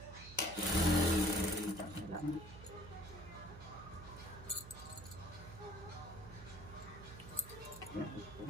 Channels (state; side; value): noise; right; hum, 14 dB below the sound